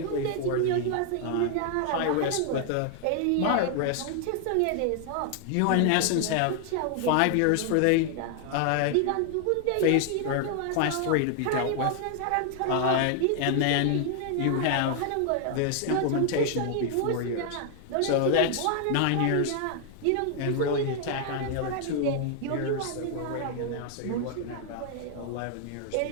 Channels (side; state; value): both; different; correlation 0.00